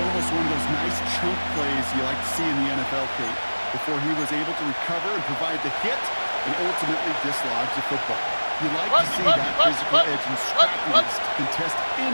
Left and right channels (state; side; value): inverted; both; correlation -1.00